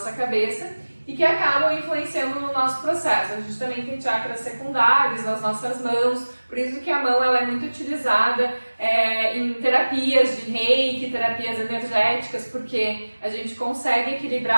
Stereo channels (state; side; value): inverted; both; correlation -1.00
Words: cabeça, e que acabam influenciando no nosso processo. A gente também tem chakras secundários nas nossas mãos, por isso que a mão ela é muito utilizada em terapias de reiki, terapias energéticas, porque a gente consegue